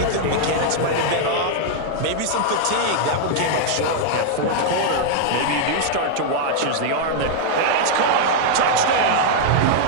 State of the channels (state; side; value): different; both; correlation -0.01